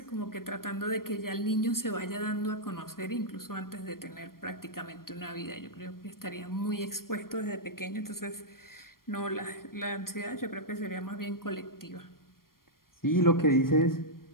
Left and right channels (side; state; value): right; late; 0.92 ms